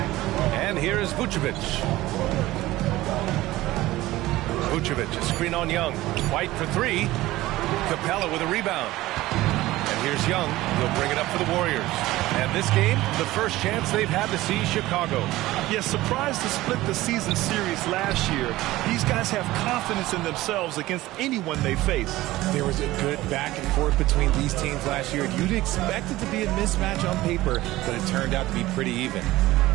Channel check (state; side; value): quieter; left; 17.3 dB